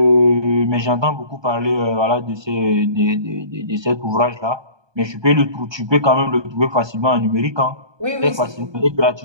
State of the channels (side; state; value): left; late; 1.2 ms